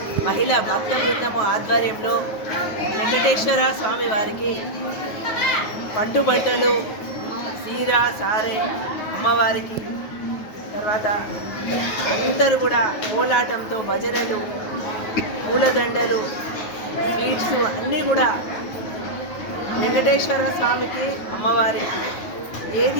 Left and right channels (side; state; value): right; late; 9.4 ms